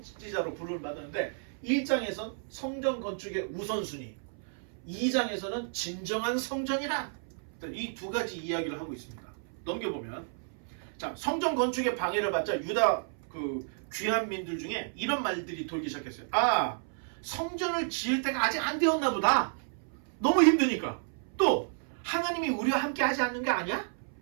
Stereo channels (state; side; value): silent; left; 57 dB below the other